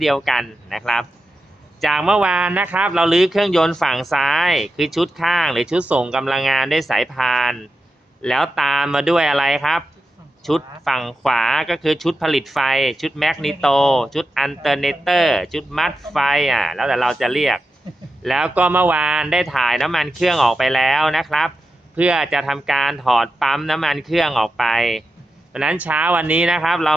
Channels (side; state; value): both; normal; correlation 0.90